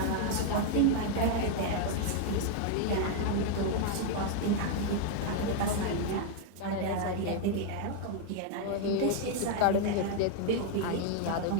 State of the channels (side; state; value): both; different; correlation 0.00